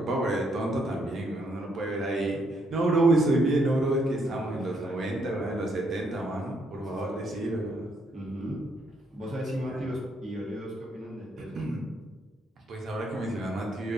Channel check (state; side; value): normal; both; correlation 0.73